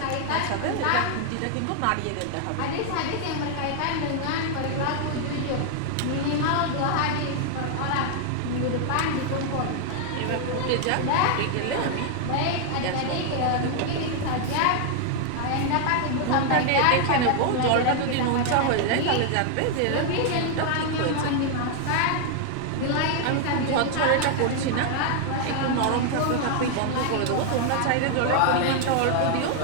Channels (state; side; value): different; both; correlation 0.00